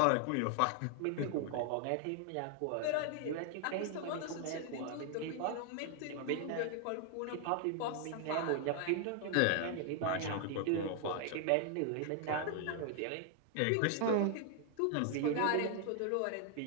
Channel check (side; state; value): both; different; correlation 0.00